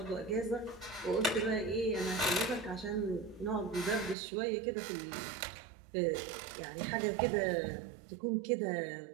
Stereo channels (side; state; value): left; drops out; at 4.2 s